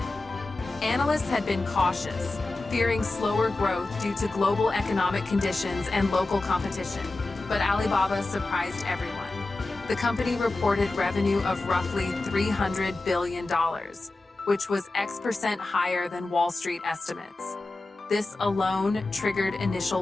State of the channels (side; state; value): right; quieter; 3.1 dB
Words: Analysts had been cautious, fearing slower growth due to global economic conditions and local competition, but Alibaba surprised everyone. The company reported revenue of roughly $300 billion, which was X% higher than Wall Street estimates. This alone triggered initial